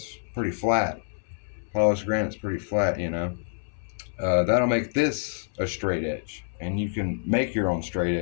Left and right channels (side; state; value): right; silent; 60 dB below the other